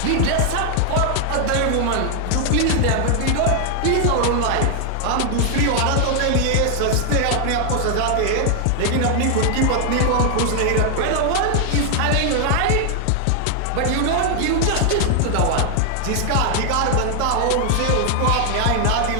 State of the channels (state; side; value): different; both; correlation 0.00